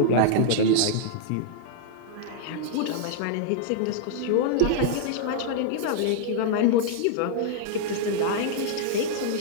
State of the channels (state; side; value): different; both; correlation -0.01